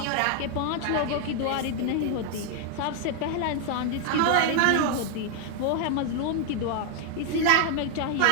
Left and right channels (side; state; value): both; different; correlation 0.00